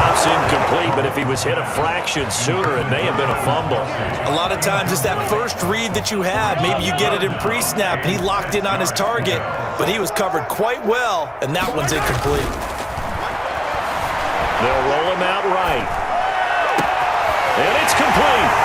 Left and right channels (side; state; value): both; identical; correlation 1.00